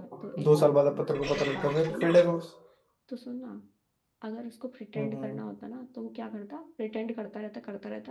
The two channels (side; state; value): both; identical; correlation 1.00